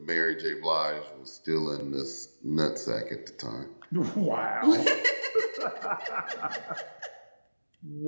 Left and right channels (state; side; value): inverted; both; correlation -1.00